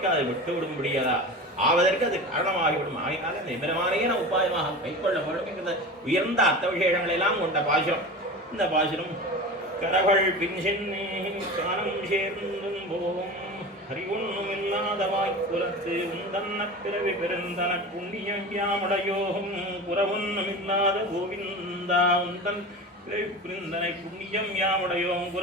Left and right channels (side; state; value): both; normal; correlation 0.31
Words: விட்டு விடும்படியதா ஆவதற்கு அது காரணமாகிவிடும். ஆகினால இந்த எம்பெருமானையே நான் உபாயமாக கைக்கொள்ள வேண்டும் என்கிற உயர்ந்த அர்த்த விசேஷங்களை எல்லாம் கொண்ட பாசுரம் இந்த பாசுரம். கரகள் பின் சென்னே கானம் சேர்ந்தும் போகும் அறிவொன்னும் இல்லாத வாய்ப்புலத்து உந்தன்ன பிறவி பெருந்தன புண்ணியம் யாமுடையோகும் புறவொன்னும் இல்லாத கோவிந்தா உந்தன் பிறவி புரிந்தனை புண்ணியம் யாமுடையோம்